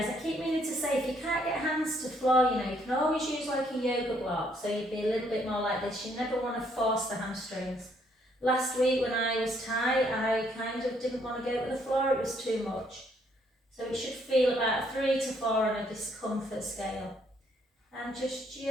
I keep meaning to say, if you can't get hands to floor, you can always use like a yoga block, so you'd be a little bit more like this. You never want to force the hamstrings. Last week when I was tight, I kind of didn't want to go to the floor, it was too much. So it should feel about 3 to 4 on a discomfort scale. And just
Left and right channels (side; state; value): both; normal; correlation 0.69